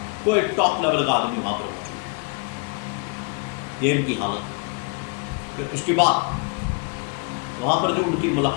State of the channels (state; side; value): quieter; right; 31.9 dB